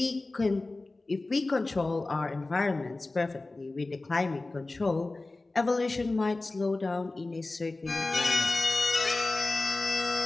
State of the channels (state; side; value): quieter; right; 3.2 dB